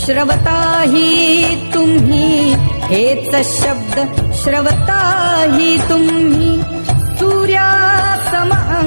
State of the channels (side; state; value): both; inverted; correlation -1.00